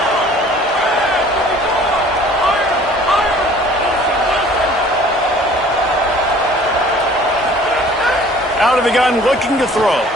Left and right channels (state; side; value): normal; both; correlation 0.51